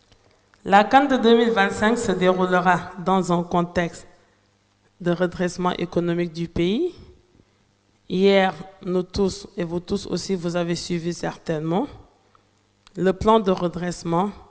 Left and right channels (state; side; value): identical; both; correlation 1.00